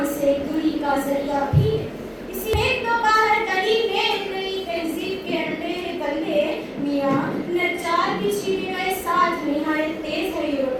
سے دوری کا ذریعہ بھی ہے۔ اسی ایک دو باہر گلی میں نئی تہذیب کے اندھیرے بندے میاں نجار کی چھینے گئے ساتھ نہایت تیز ہے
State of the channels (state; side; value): identical; both; correlation 1.00